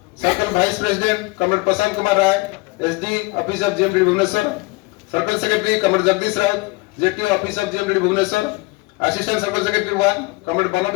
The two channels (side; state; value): right; quieter; 25.1 dB